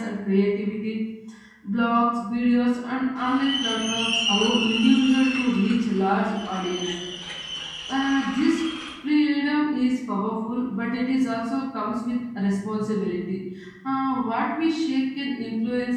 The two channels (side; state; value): both; identical; correlation 1.00